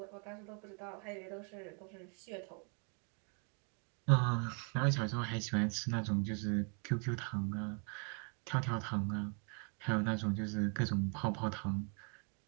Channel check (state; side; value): quieter; left; 37.8 dB